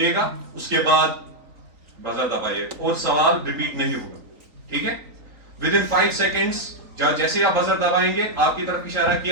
گا, اس کے بعد بزر دبائیے اور سوال ریپیٹ نہیں ہوگا. ٹھیک ہے, ودن 5 سیکنڈز جیسے آپ بزر دبائیں گے آپ کی طرف اشارہ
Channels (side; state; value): left; late; 3.9 ms